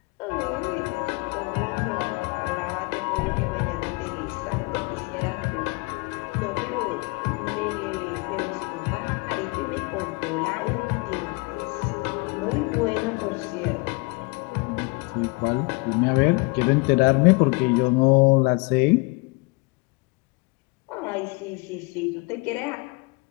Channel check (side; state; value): right; quieter; 28.7 dB